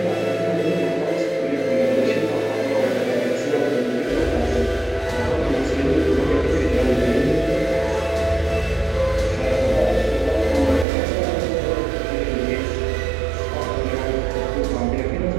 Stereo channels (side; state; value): left; drops out; at 10.9 s